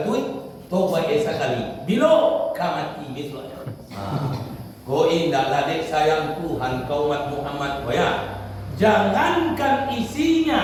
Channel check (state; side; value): identical; both; correlation 1.00